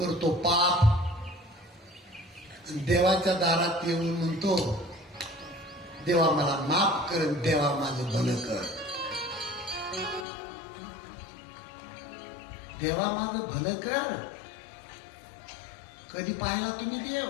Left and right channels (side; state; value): right; drops out; at 10.2 s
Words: पाप, देवाच्या दारात येऊन म्हणतो, देवा मला माफ कर, देवा माझं भलं कर, देवा माझं भलं कर। कधी पाहिला तुम्ही देव?